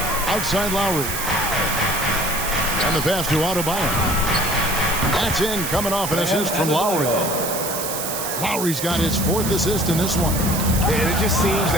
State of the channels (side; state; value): right; noise; hiss, 4 dB below the sound